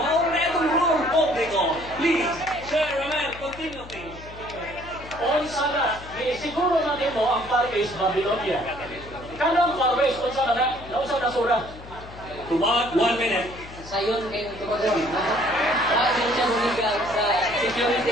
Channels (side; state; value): left; noise; hum, 16 dB below the sound